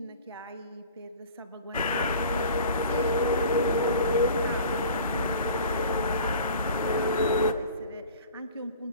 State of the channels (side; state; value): both; inverted; correlation -0.44